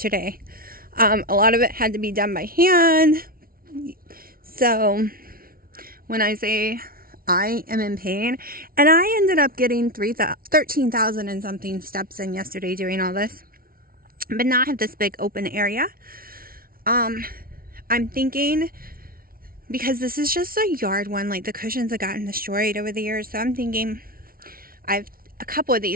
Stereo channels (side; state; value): left; late; 0.43 ms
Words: A lot of it had to be done by hand. So when I say I am in pain, and I ended up getting 13,000 and something steps in yesterday doing all this, but not have this big open area. I'm thinking, because this is just a yard one, like the cushions have gotten destroyed over the years, so I'm thinking I have a couple of